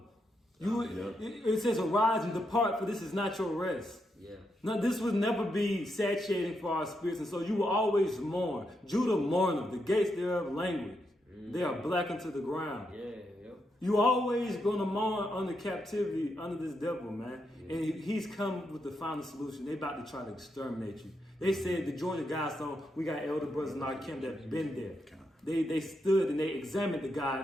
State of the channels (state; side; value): normal; both; correlation 0.82